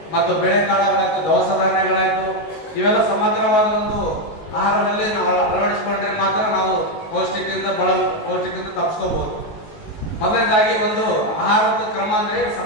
ಮತ್ತು ಬೇಳೆಕಾಳುಗಳಾಯ್ತು, ದವಸ ಧಾನ್ಯಗಳಾಯ್ತು, ಇವೆಲ್ಲ ಸಮಗ್ರವಾದ ಒಂದು ಆಹಾರದಲ್ಲಿ ನಾವು ಅಳವಡಿಸಿಕೊಂಡ್ರೆ ಮಾತ್ರ ನಾವು ಪೌಷ್ಟಿಕದಿಂದ ತಪ್ಪಿಸ್ಕೋಬಹುದು. ಮೊದಲನೇದಾಗಿ ಒಂದು ಆಹಾರದ ಕ್ರಮ ಅಂದ್ರೆ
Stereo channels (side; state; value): right; late; 19 ms